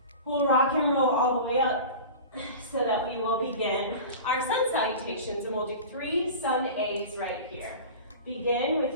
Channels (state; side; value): inverted; both; correlation -0.34